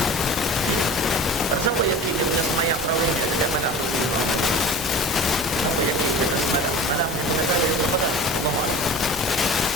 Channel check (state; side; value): normal; both; correlation 0.36